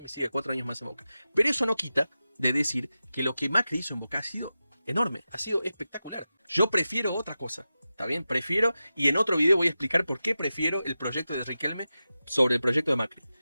siga 4 años más en Boca. Pero eso no quita de decir que lo que Macri hizo en Boca ha sido enorme, ha sido espectacular. Yo prefiero otra cosa, ¿está bien? Prefiero, y en otro video voy a explicar por qué prefiero el proyecto de Riquelme sobre el proyecto de Macri.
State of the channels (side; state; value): both; inverted; correlation -0.93